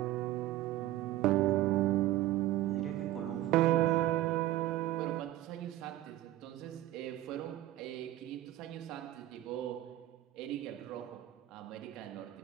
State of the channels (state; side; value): quieter; left; 14.9 dB